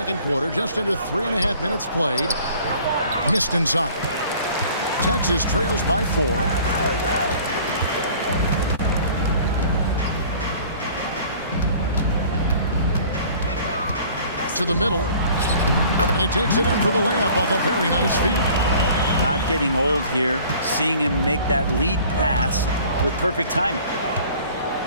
quarter, just under 3.5 minutes played. Missed inside. Texas trails by 4. To the middle. And he takes it in for the layup off a very nice feed. Not getting old here, seeing him make that lead pass with perfect timing.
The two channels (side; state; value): both; inverted; correlation -0.50